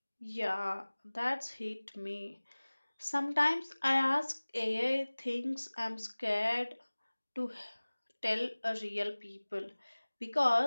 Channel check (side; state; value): both; inverted; correlation -1.00